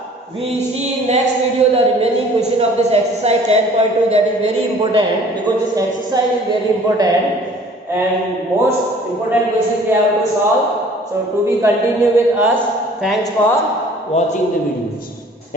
We see in next video the remaining question of this exercise 10.2, that is very important because this exercise is very important and most important question we have to solve. So to be continue with us. Thanks for watching the videos.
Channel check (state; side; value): normal; both; correlation 0.52